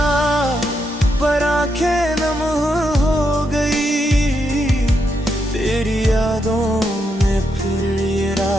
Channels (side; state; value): both; normal; correlation 0.81